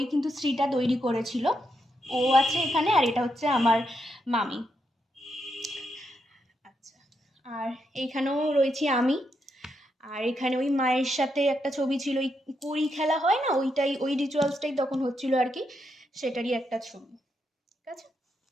কিন্তু শ্রীটা তৈরি করেছিল। ও আছে এখানে, আর এটা হচ্ছে আমার মামি। আচ্ছা, আর এইখানেও রয়েছি আমি। আর এখানে ওই মায়ের সাথে একটা ছবি ছিল, ওই কড়ি খেলা হয় না, ওইটাই, ওই রিচুয়ালসটাই তখন হচ্ছিল আর কি, সেটারই একটা ছবি। ঠিক আছে।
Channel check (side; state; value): both; normal; correlation 0.81